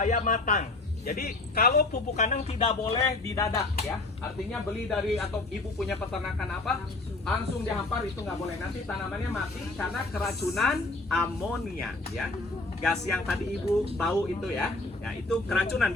matang. Jadi kalau pupuk kandang tidak boleh didadak ya. Artinya beli dari atau ibu punya peternakan apa langsung dihampar itu nggak boleh. Nanti tanamannya mati karena keracunan amonia ya. Gas yang tadi ibu bau itu ya. Ya itu keracunan,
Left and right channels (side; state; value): right; quieter; 3.1 dB